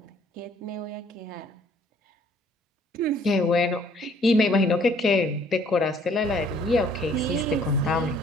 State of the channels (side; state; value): both; normal; correlation 0.60